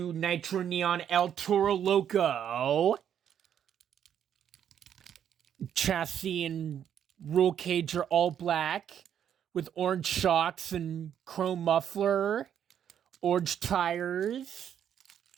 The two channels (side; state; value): left; quieter; 9.2 dB